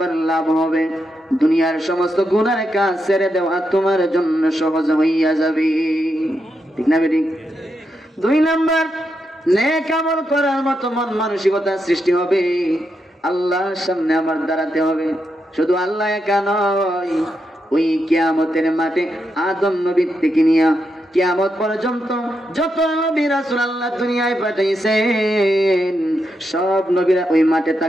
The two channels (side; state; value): both; normal; correlation 0.84